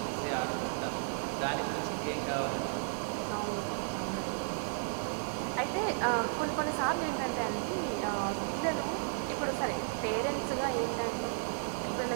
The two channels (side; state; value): left; silent; digital silence